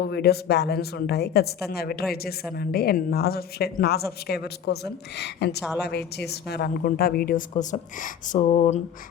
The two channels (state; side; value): quieter; right; 8.4 dB